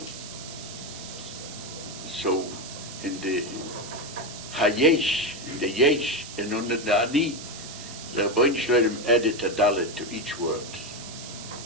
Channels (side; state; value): right; noise; hiss, 12 dB below the sound